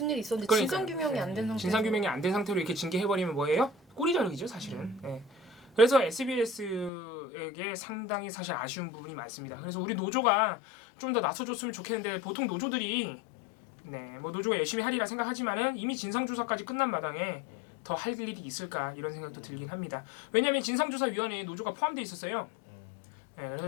일이 있었는데 그러니까요. 진상 규명이 안 된 상태. 진상 규명이 안 된 상태로 이렇게 징계해버리면 뭐예요? 꼬리 자르기죠, 사실은. 네. 그래서 SBS에게 상당히 사실 아쉬운 부분이 많습니다. 그래서 우리 노조가 좀 더 나서줬으면 좋겠는데 보통 노조들이 뭐 노조가 열심히 하리라 생각하지만은 이미 진상조사까지 끝난 마당에 더 할 일이 있을까 이런 생각도 들긴 합니다. 왜냐하면 진상조사위원회에 노조가 포함되어 있었어요. 네,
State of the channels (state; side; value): drops out; right; at 6.9 s